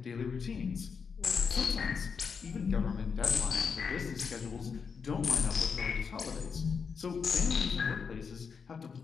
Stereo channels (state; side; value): quieter; right; 5.8 dB